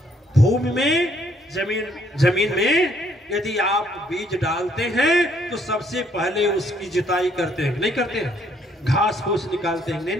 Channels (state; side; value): normal; both; correlation 0.67